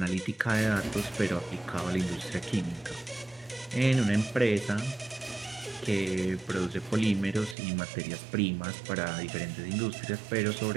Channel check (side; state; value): left; drops out; at 7.6 s